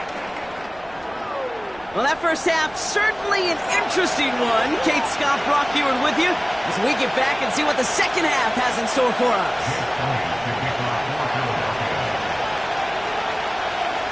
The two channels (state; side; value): noise; right; rumble, 24 dB below the sound